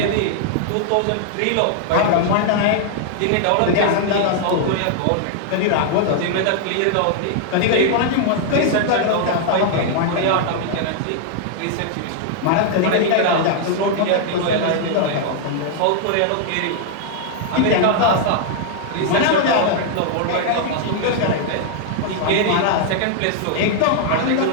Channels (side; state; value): both; different; correlation -0.01